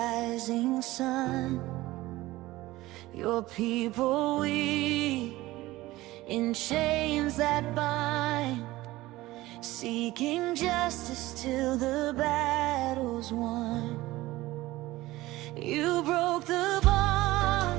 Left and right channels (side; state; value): left; quieter; 18.0 dB